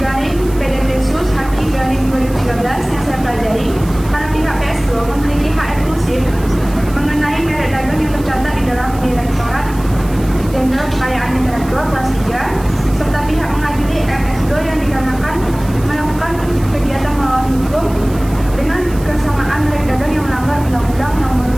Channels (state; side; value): noise; right; hiss, 19 dB below the sound